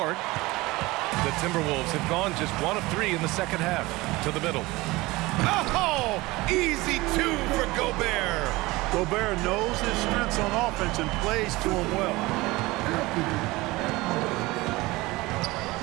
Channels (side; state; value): left; quieter; 21.0 dB